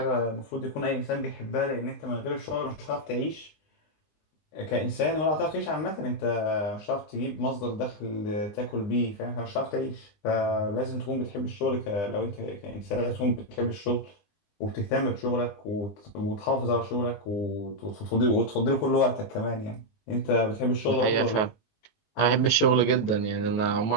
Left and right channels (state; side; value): late; right; 19 ms